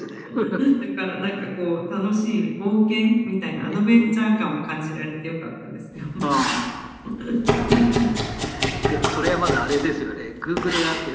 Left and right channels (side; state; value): both; identical; correlation 1.00